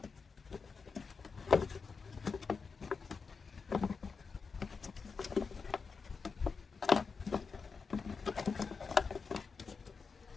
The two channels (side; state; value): right; quieter; 5.1 dB